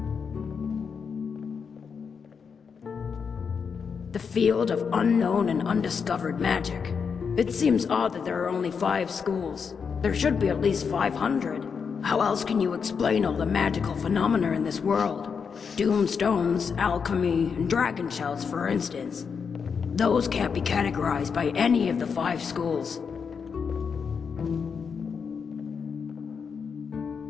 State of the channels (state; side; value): quieter; right; 6.1 dB